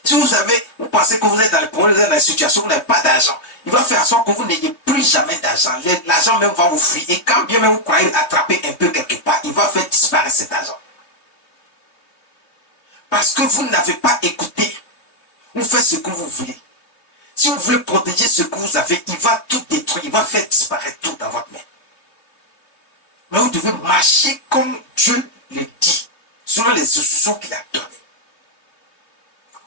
Si vous pensez que vous êtes dans les problèmes, vous êtes dans les situations où vous n'avez pas d'argent, il va faire en sorte que vous n'ayez plus jamais d'argent. L'argent même va vous fuir. Et quand bien même vous croyez attraper un peu quelque part, il va faire disparaître cet argent. Parce que vous n'avez pas écouté. Vous faites ce que vous voulez. Si vous voulez protéger ce que vous avez, il va tout détruire. Il va faire disparaître tout dans votre main. Mais vous devez marcher comme Dieu le dit, selon les instructions qu'il a données.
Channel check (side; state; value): right; late; 3.0 ms